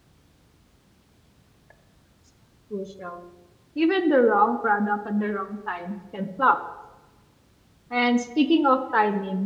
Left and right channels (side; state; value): both; identical; correlation 1.00